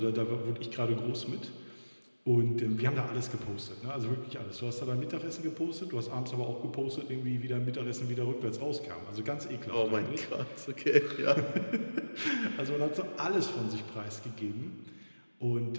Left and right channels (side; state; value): both; inverted; correlation -1.00